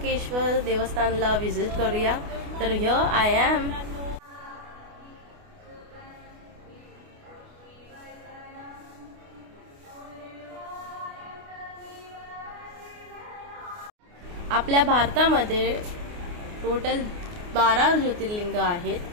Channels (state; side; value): late; left; 28 ms